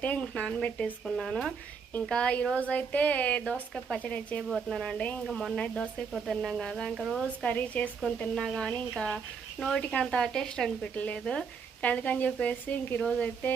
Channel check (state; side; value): quieter; left; 6.0 dB